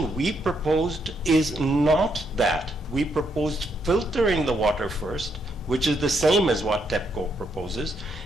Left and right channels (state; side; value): normal; both; correlation 0.76